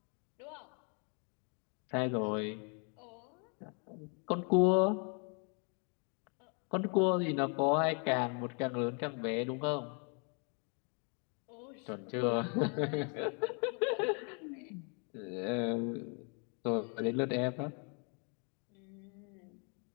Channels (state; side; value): quieter; right; 37.2 dB